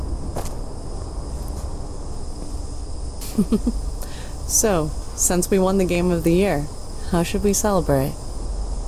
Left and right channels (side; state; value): both; identical; correlation 1.00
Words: So, since we won the game of the year, how should we celebrate?